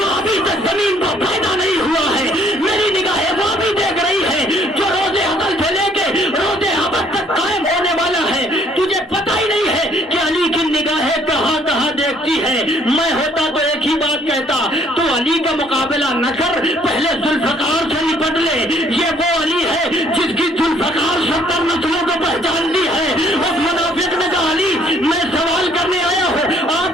ابھی تک زمین پر پیدا نہیں ہوا ہے. میری نگاہیں وہ بھی دیکھ رہی ہے جو روزے ازل سے لے کے روزے ابد تک قائم ہونے والا ہے. تجھے پتہ ہی نہیں ہے کہ علی کی نگاہیں کہاں کہاں دیکھتی ہے. میں ہوتا تو ایک ہی بات کہتا، تو علی کا مقابلہ نہ کر، پہلے ذوالفقار سے نپٹ لے. یہ وہ علی ہے جس کی ذوالفقار 70 نسلوں کو پہچان دی ہے. اس منافق نے کہا علی میں سوال کرنے آیا ہوں،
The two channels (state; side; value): normal; both; correlation 0.62